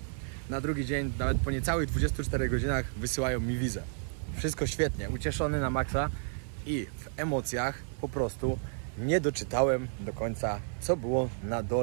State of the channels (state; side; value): silent; left; 57 dB below the other